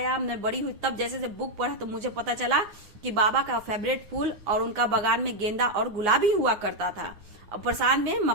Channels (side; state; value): left; late; 9.7 ms